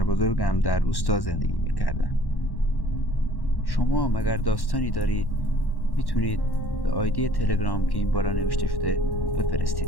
بزرگم در روستا زندگی میکردم. شما هم اگر داستانی دارید میتونید به آیدی تلگرام که این بالا نوشته شده بفرستید.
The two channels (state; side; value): late; right; 1.1 ms